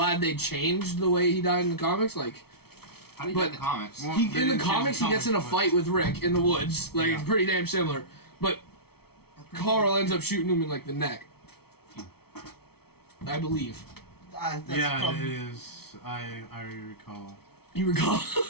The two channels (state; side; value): late; right; 0.95 ms